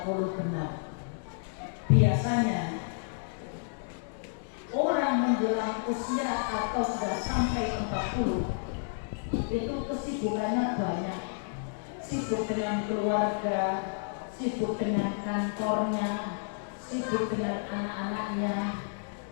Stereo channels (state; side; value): silent; right; digital silence